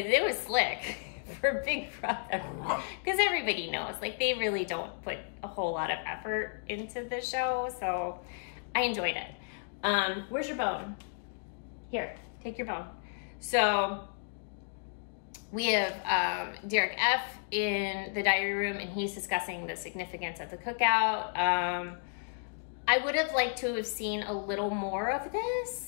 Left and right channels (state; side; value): silent; right; digital silence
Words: was slick for Big Brother. Because everybody knows, like, they really don't put a whole lot of effort into the show. So I enjoyed it. Where's your bone? Here, take your bone. So we have Derek F. in the diary room, and he's discussing the significance of the cookout. I would have liked to have seen a little more of